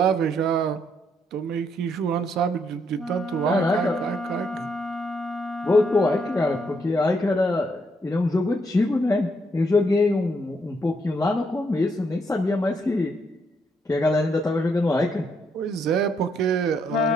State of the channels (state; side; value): normal; both; correlation 0.75